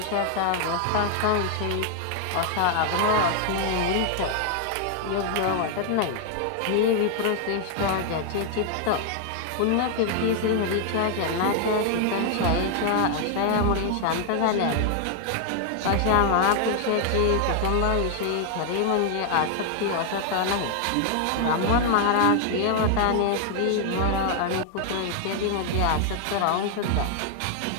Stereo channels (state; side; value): different; both; correlation 0.00